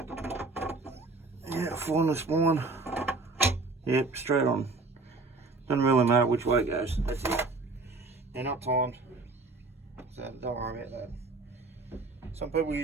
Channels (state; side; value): quieter; left; 3.7 dB